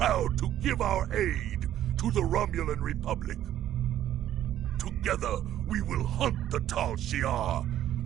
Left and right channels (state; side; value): quieter; left; 12.0 dB